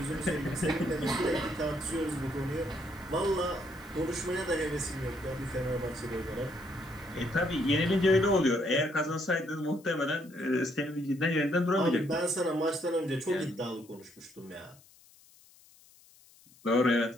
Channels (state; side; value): noise; left; hiss, 26 dB below the sound